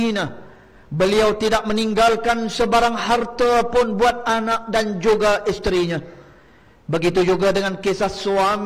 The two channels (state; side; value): identical; both; correlation 1.00